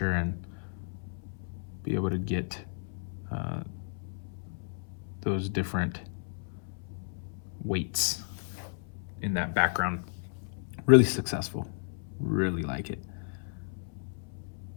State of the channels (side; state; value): right; silent; 56 dB below the other